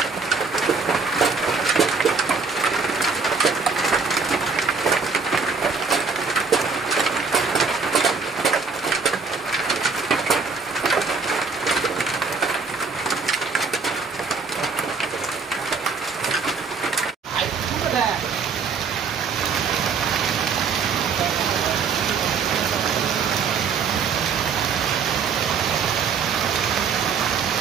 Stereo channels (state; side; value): quieter; left; 5.2 dB